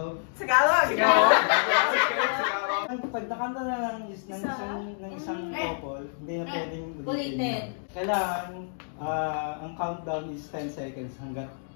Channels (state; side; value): silent; right; digital silence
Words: Tagalog! Pag nakanta na ng isang couple, hindi na pwedeng ulitin. Kailangan, ang countdown is 10 seconds hanggat